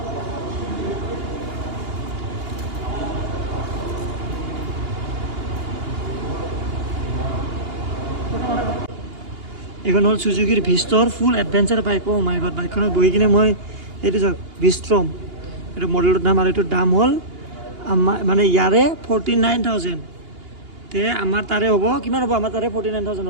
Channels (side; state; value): left; late; 2.8 ms